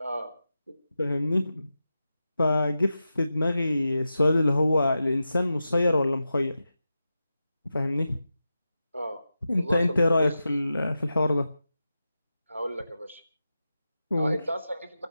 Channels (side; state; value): both; inverted; correlation -0.91